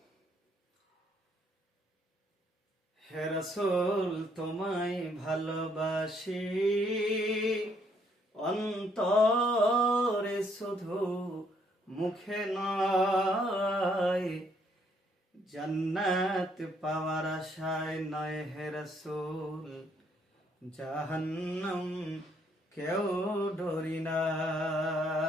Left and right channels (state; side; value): normal; both; correlation 0.69